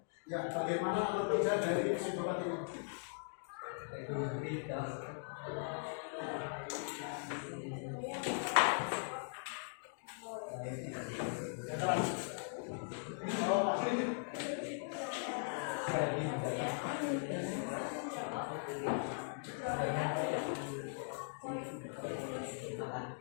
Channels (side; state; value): right; silent; digital silence